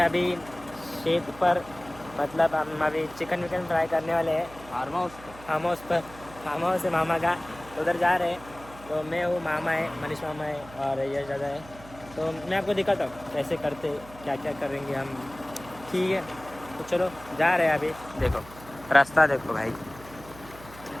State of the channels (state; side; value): noise; right; hum, 19 dB below the sound